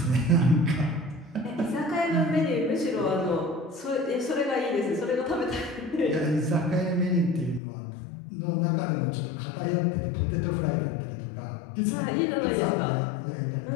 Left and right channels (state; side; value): drops out; right; at 7.6 s